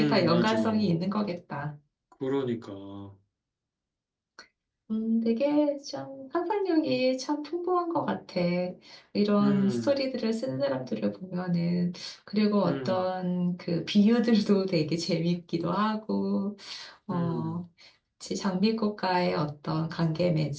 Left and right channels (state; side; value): identical; both; correlation 1.00